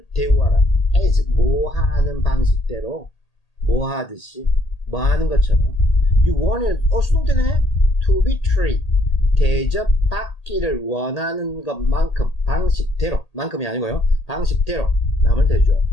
대우하라. as 뭐 하는 방식대로 뭐 하듯이 뭐 하는 것처럼 you want 수동태네. to be treated 대접받기를 원하는 것만큼 방식대로 만큼이 아니고요. 방식대로 남을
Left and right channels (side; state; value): right; late; 1.8 ms